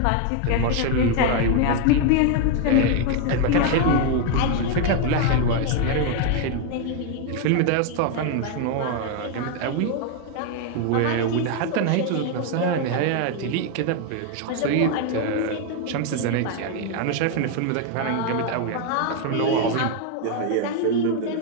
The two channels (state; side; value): different; both; correlation 0.01